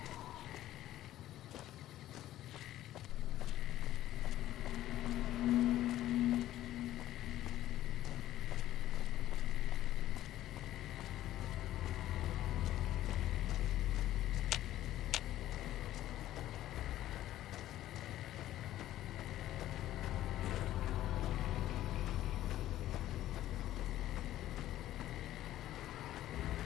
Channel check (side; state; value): right; quieter; 13.8 dB